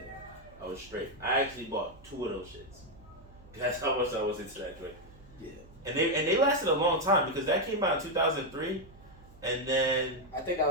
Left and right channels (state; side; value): noise; right; hum, 23 dB below the sound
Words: I was straight. I actually bought 2 of those shits. That's how much I was into that joint. Yeah. And they lasted a long time because that came out in 2003, and then I think that